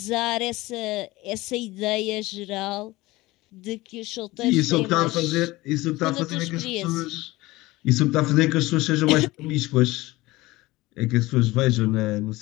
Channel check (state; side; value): quieter; right; 19.8 dB